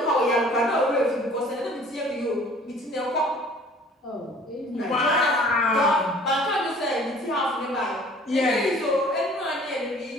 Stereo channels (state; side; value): normal; both; correlation 0.51